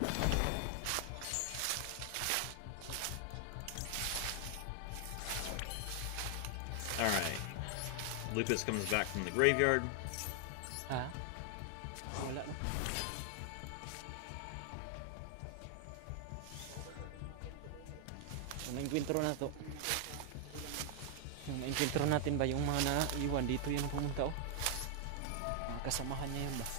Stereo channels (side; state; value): both; different; correlation 0.00